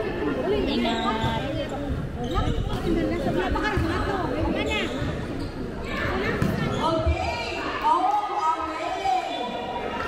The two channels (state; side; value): identical; both; correlation 1.00